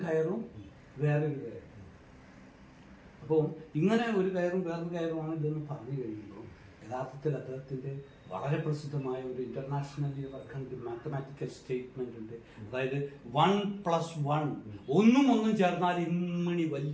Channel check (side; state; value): both; identical; correlation 1.00